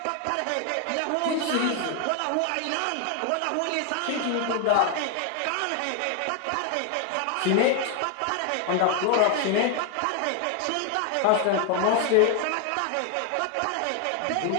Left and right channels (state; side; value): different; both; correlation 0.01